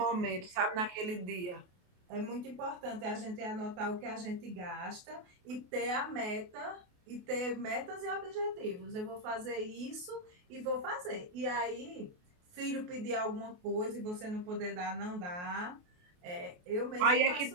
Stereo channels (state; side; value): late; left; 28 ms